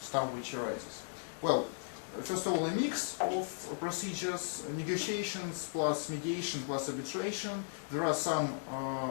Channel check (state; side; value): silent; right; digital silence